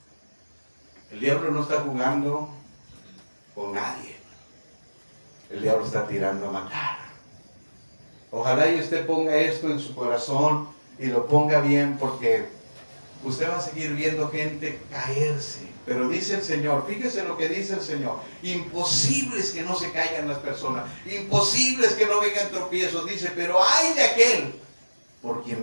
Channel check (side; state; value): both; inverted; correlation -1.00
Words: El diablo no está jugando con nadie. El diablo está tirando a matar. Ojalá y usted ponga esto en su corazón y lo ponga bien, porque usted va a seguir viendo gente caerse. Pero dice el Señor, fíjese lo que dice el Señor: imposible es que no se caigan las personas, imposible es que no vengan tropiezos. Dice, pero ay de aquel por